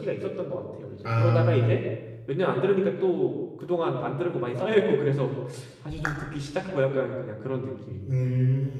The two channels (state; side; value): identical; both; correlation 1.00